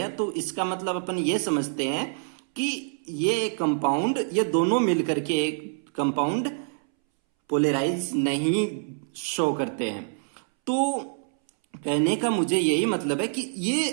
तो इसका मतलब अपन ये समझते हैं कि ये कंपाउंड, ये दोनों मिलकर के एक कंपाउंड पोलराइज नहीं शो करते हैं। तो कहने का मुझे यही मतलब है कि ये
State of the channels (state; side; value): silent; left; 61 dB below the other